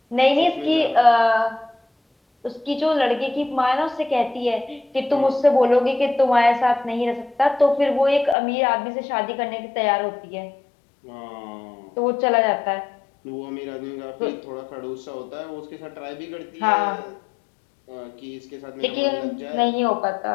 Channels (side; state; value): right; drops out; at 8.3 s